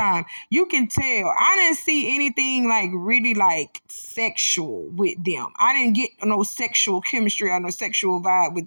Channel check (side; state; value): both; inverted; correlation -1.00